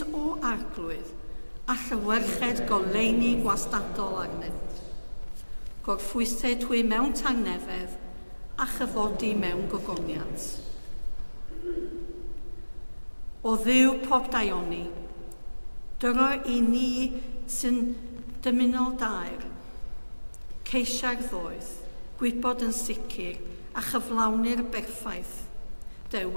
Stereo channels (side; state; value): both; inverted; correlation -1.00